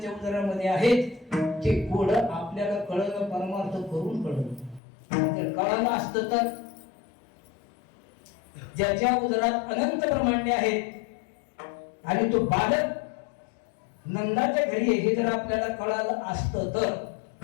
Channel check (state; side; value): drops out; right; at 4.8 s